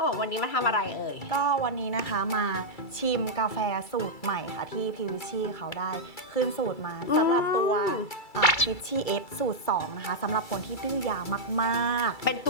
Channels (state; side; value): late; right; 2.3 ms